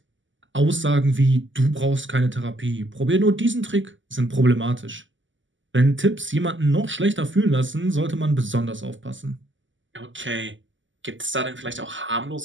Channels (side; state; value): left; late; 0.55 ms